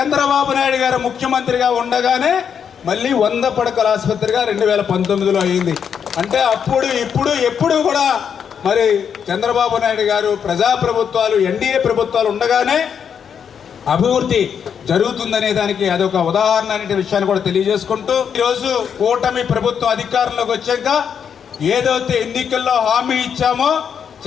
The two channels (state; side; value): quieter; right; 7.5 dB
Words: నాయుడు గారు ముఖ్యమంత్రిగా ఉండగానే మళ్ళీ 100 పడకల ఆసుపత్రిగా 2019లో అయింది. అంటే అప్పుడు ఇప్పుడు ఎప్పుడు కూడా మరి చంద్రబాబు నాయుడు గారు ప్రజాప్రభుత్వాలు, ఎన్డీఏ ప్రభుత్వాలు ఉండగానే అభివృద్ధి జరుగుతుందనే దానికి అదొక ఉదాహరణ అనే విషయాన్ని కూడా తెలియజేసుకుంటూ, ఈరోజు కూటమి ప్రభుత్వం అధికారంలోకి వచ్చాక ఏదైతే ఎన్నికల్లో హామీ ఇచ్చామో,